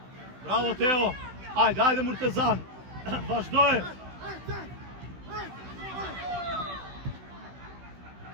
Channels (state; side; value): late; left; 16 ms